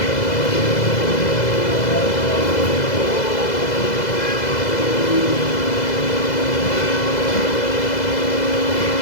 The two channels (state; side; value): late; right; 2.0 ms